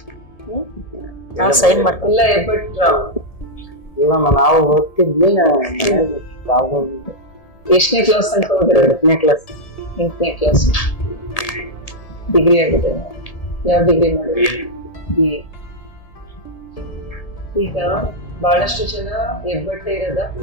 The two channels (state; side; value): late; right; 1.8 ms